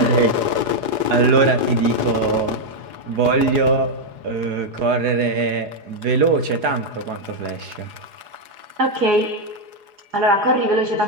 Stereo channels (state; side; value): late; left; 4.8 ms